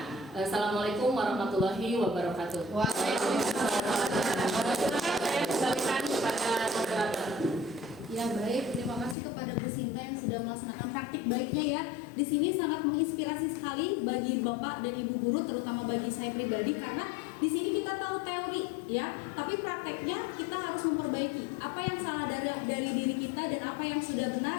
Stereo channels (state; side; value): drops out; right; at 9.2 s